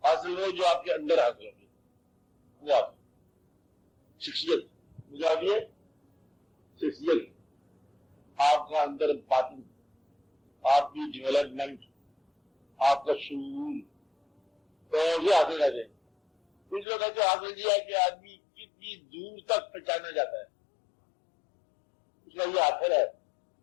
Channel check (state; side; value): drops out; right; at 16.9 s